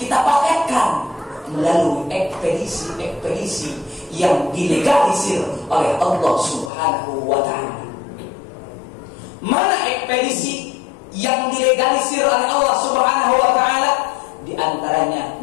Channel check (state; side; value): drops out; right; at 6.7 s